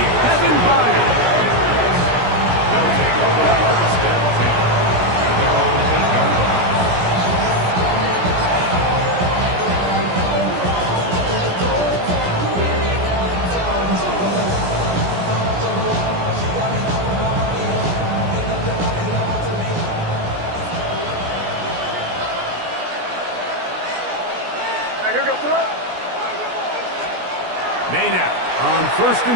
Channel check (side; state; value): left; late; 17 ms